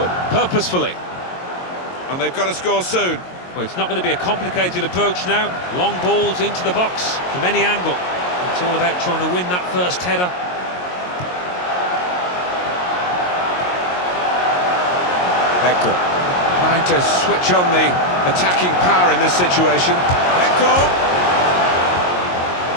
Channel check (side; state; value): right; late; 22 ms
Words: purposefully. And they've got to score soon. Well, it's not going to be a complicated approach now. Long balls into the box from any angle. It's all about trying to win that first header. Hector. Trying to switch on the attacking power in this situation. Hector!